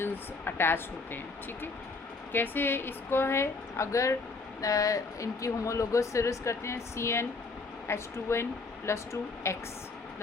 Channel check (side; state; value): right; quieter; 4.0 dB